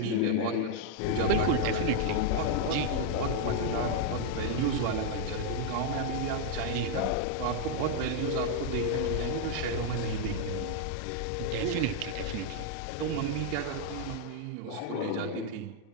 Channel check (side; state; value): both; different; correlation 0.00